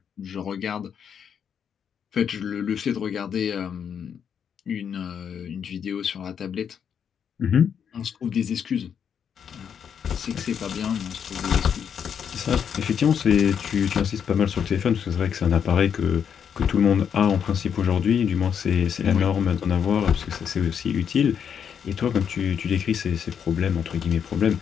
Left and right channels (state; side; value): quieter; right; 7.8 dB